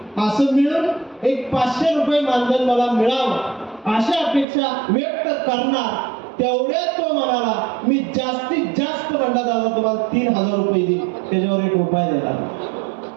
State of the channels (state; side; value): drops out; left; at 4.5 s